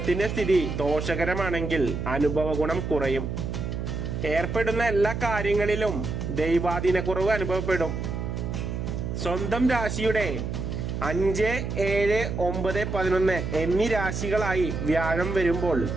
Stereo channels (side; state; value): right; noise; hum, 4 dB below the sound